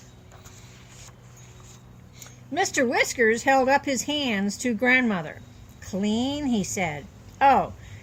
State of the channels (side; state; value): both; identical; correlation 1.00